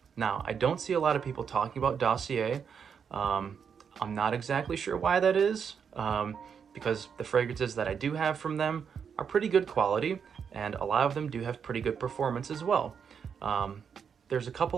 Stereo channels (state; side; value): quieter; left; 6.9 dB